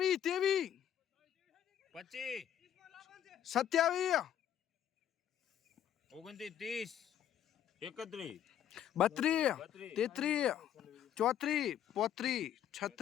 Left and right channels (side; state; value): right; quieter; 10.3 dB